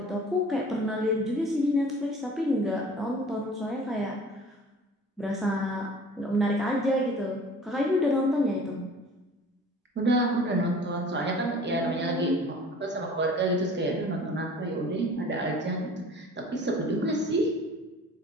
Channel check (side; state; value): both; normal; correlation 0.46